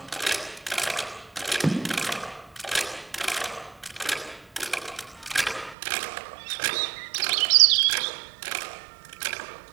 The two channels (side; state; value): left; drops out; at 5.8 s